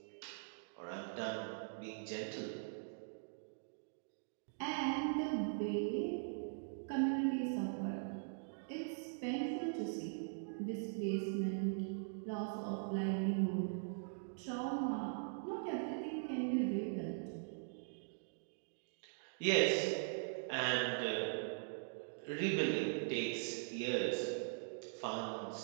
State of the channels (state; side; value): silent; left; digital silence